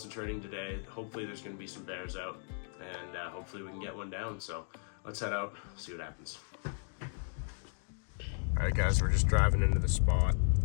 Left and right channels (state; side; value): silent; right; 54 dB below the other